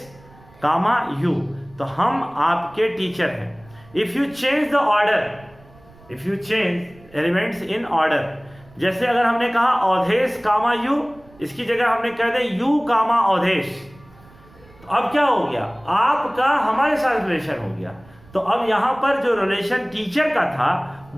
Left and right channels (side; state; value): right; noise; rumble, 25 dB below the sound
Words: कामा यू, तो हम आपके टीचर हैं। If you change the order, if you change elements in order, जैसे अगर हमने कहा अवधेश कामा यू, इसकी जगह हमने कह दे यू कामा अवधेश, तो अब क्या हो गया? आपका हमारे साथ रिलेशन हो गया। तो अब यहां पर जो रिलेशन टीचर का था